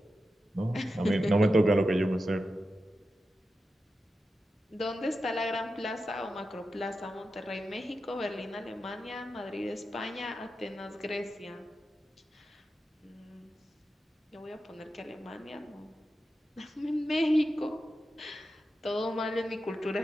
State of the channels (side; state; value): both; normal; correlation 0.90